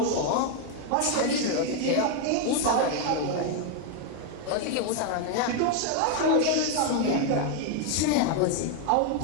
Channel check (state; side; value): different; both; correlation 0.01